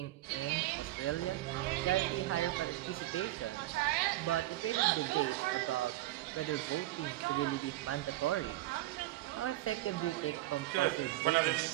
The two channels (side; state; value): left; quieter; 16.9 dB